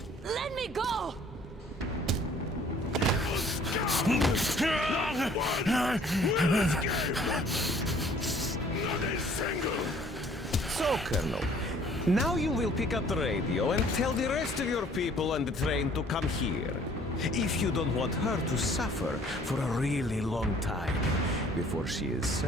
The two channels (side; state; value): both; normal; correlation 0.56